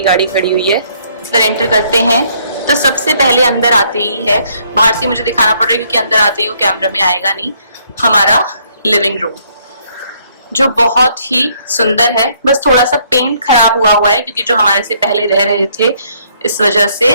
गाड़ी खड़ी हुई है। इधर एंटर करते हैं तो सबसे पहले अंदर आते ही है, बाहर से मुझे दिखाना पड़ रहा है क्योंकि अंदर आते ही वो कैमरा में आएगा नहीं, हमारा लिविंग रूम जो बहुत ही सुंदर है। बस थोड़ा सा पेंट खराब हुआ है क्योंकि जो हमारे से पहले रह रहे थे इस वजह से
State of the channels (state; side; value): inverted; both; correlation -0.67